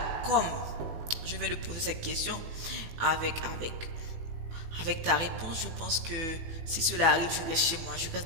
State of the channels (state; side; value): late; left; 18 ms